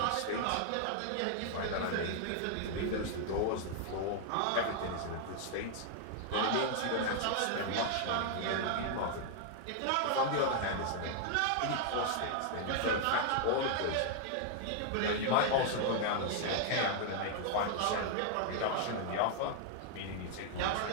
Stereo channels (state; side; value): different; both; correlation 0.00